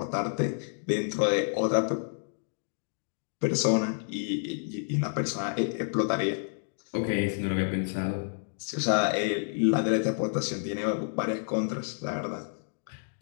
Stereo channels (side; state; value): right; silent; digital silence